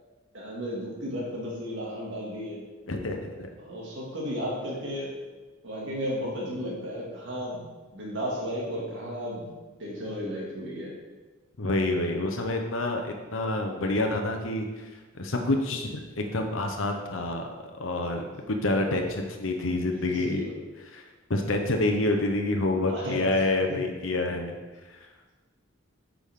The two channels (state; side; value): normal; both; correlation 0.25